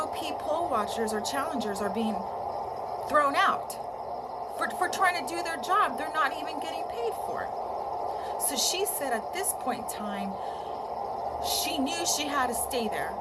poll watchers or challengers are being thrown out for trying to do their job, they're not even getting paid for it. So she said at this point in time, she knew she had to stay there,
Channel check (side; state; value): both; identical; correlation 1.00